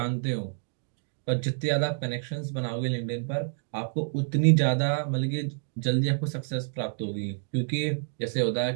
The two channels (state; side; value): silent; left; digital silence